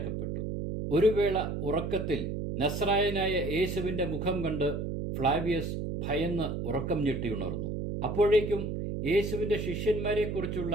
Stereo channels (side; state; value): right; noise; hum, 3 dB below the sound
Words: ഒരു വേള ഉറക്കത്തിൽ നസ്രായനായ യേശുവിന്റെ മുഖം കണ്ട് ഫ്ലാവിയസ് ഭയന്ന് ഉറക്കം ഞെട്ടിയുണർന്നു. അപ്പോഴേക്കും യേശുവിന്റെ ശിഷ്യന്മാരെക്കുറിച്ചുള്ള